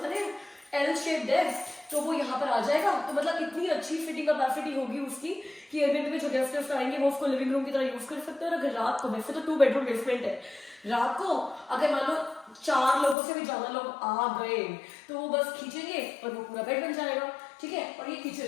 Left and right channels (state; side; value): drops out; right; at 13.2 s